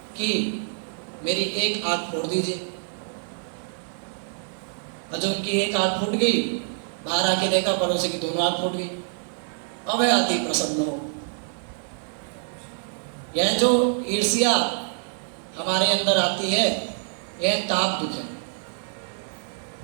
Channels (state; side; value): silent; left; digital silence